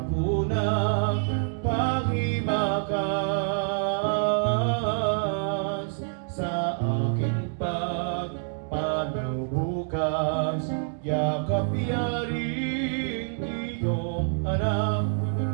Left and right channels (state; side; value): silent; left; 58 dB below the other